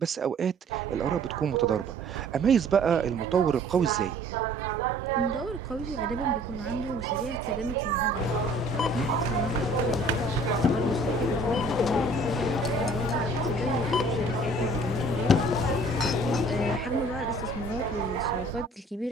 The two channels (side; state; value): both; normal; correlation 0.53